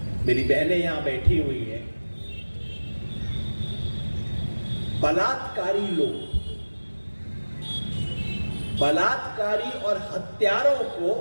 मेरी बहनें यहां बैठी हुई हैं, बलात्कारी लोग, बलात्कारी और हत्यारों को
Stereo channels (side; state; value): both; inverted; correlation -1.00